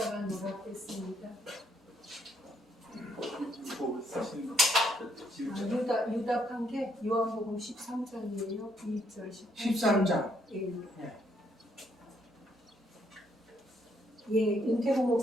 노랗겠습니다. 유답한 게 요한복음 13장이에요. 2절 13장. 윤태국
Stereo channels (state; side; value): normal; both; correlation 0.72